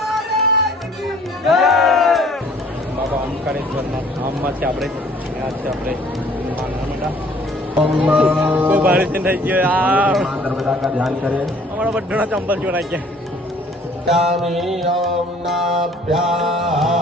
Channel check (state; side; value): normal; both; correlation 0.56